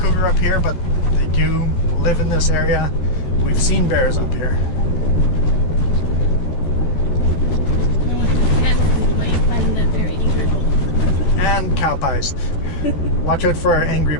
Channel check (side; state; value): right; late; 14 ms